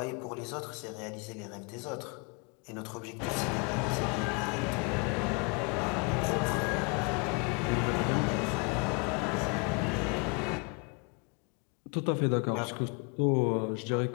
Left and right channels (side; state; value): right; quieter; 32.7 dB